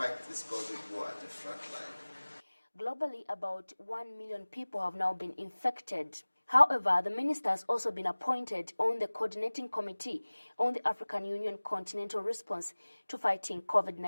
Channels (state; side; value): inverted; both; correlation -1.00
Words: this COVID war at the front line. Globally, about 1 million people have now been infected. However, the minister has also been appointed on the coordinating committee on the African Union continental response to fighting